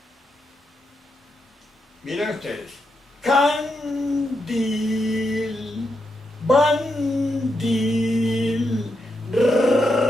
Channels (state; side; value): normal; both; correlation 0.83